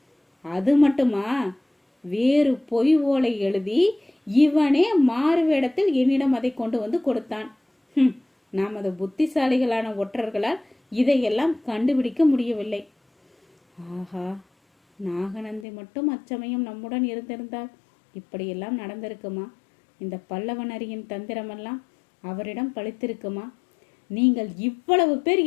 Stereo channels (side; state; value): right; drops out; at 15.7 s